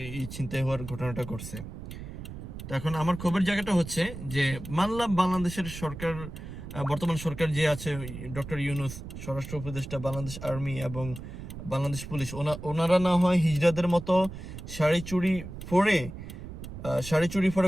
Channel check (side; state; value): right; noise; rumble, 10 dB below the sound